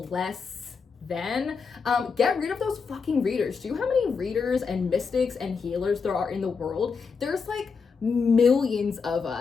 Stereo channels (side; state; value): right; quieter; 5.3 dB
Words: than, get rid of those fucking readers. Do you know how many readers and mystics and healers there are in the world? There's, like, millions of